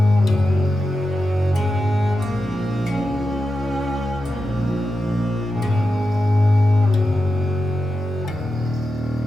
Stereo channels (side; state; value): both; normal; correlation 0.90